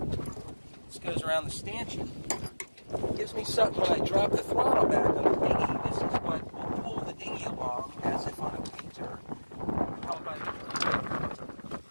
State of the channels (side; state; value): both; inverted; correlation -1.00